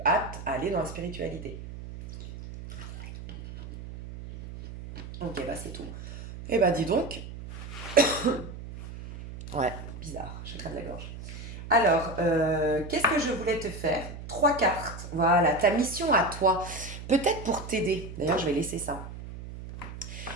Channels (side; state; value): right; noise; hum, 11 dB below the sound